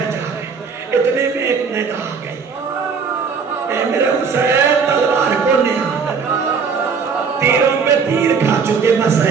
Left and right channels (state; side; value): quieter; left; 5.7 dB